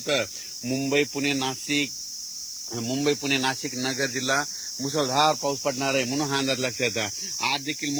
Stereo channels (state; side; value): noise; left; hiss, 16 dB below the sound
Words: तर मुंबई पुणे नाशिक नगर जिल्हा मुसळधार पाऊस पडणार आहे. म्हणून हा अंदाज लक्षात आहे. आज देखील